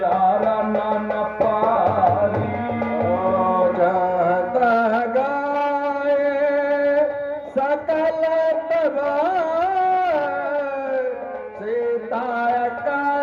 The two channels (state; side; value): identical; both; correlation 1.00